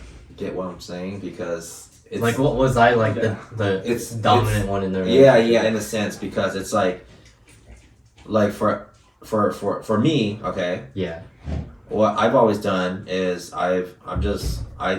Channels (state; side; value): identical; both; correlation 1.00